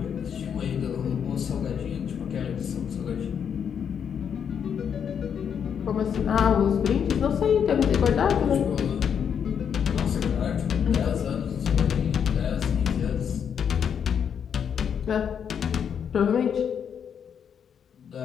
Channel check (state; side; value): quieter; right; 7.7 dB